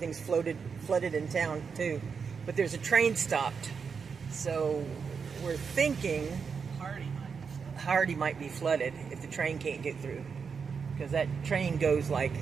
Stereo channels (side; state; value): left; quieter; 5.9 dB